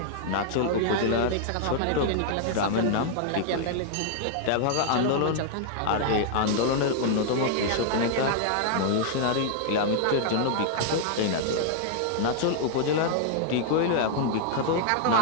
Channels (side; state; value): both; different; correlation 0.00